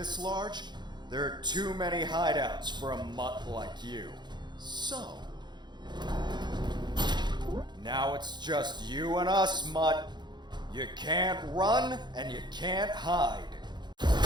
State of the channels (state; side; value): late; left; 0.21 ms